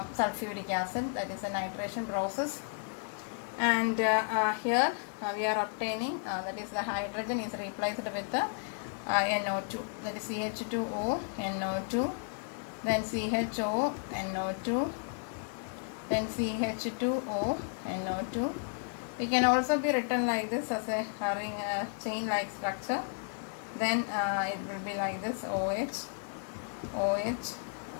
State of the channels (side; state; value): right; silent; 56 dB below the other